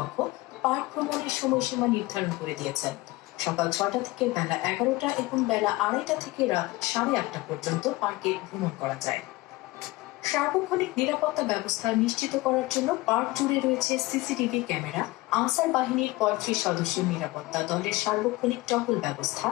পার্ক ভ্রমণের সময়সীমা নির্ধারণ করে দিয়েছেন। সকাল ৬টা থেকে বেলা ১১টা এবং বেলা ২:৩০ থেকে রাত ৮:৩০ পর্যন্ত পার্কে ভ্রমণ করা যায়। সার্বক্ষণিক নিরাপত্তা ব্যবস্থা নিশ্চিত করার জন্য পার্ক জুড়ে রয়েছে সিসিটিভি ক্যামেরা, আনসার বাহিনীর ৩৫ সদস্যের নিরাপত্তা দলের সার্বক্ষণিক টহল ব্যবস্থা,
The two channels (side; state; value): right; quieter; 20.8 dB